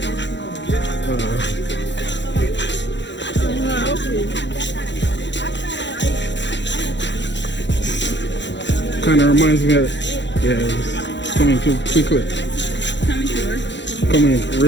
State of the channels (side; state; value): right; late; 0.52 ms